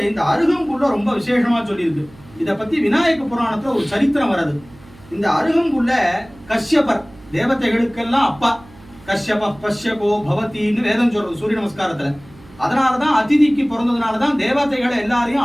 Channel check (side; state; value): right; noise; hum, 24 dB below the sound